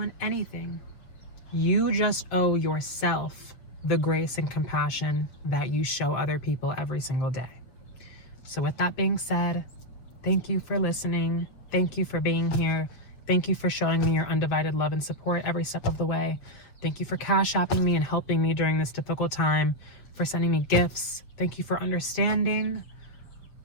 anything. You just owe yourself the grace and compassion that you show other people every single day. So with that being said, thank you for listening. Thank you for being here. Thank you for showing me your undivided love and support every step of the way. Thank you for cash apping me and helping me during this difficult time, for sending me gifts. Thank you for understanding.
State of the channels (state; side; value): late; right; 7.5 ms